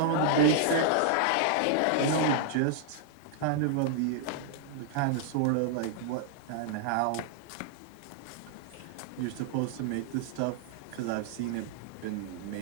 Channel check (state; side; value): different; both; correlation -0.01